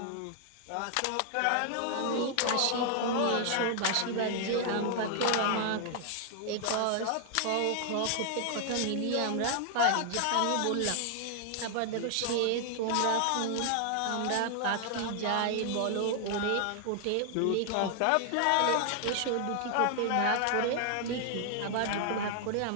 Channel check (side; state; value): both; different; correlation 0.00